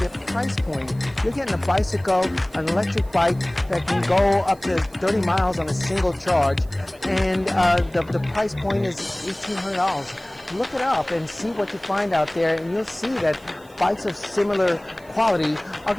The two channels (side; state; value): right; noise; hiss, 28 dB below the sound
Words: price point. You're getting a bicycle, an electric bike that can go up to 30 miles on a single charge, and the price point is $1,800. Look it up and see what you find out there, and you'll see that bikes of similar quality are